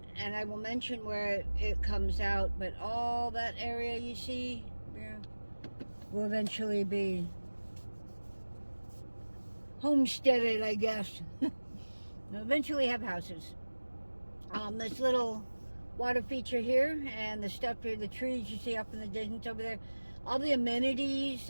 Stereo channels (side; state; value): both; inverted; correlation -1.00